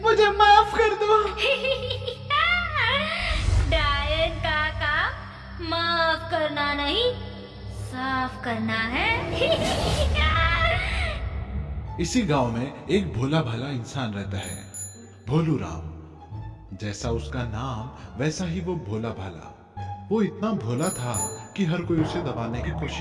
मुझे माफ कर दो। डायन का काम माफ करना नहीं, साफ करना है। इसी गांव में एक भोला भाला इंसान रहता है, भोलू राम। जैसा उसका नाम वैसा ही वो भोला भाला। वो इतना भोला था कि हर कोई उसे दबाने की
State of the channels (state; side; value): identical; both; correlation 1.00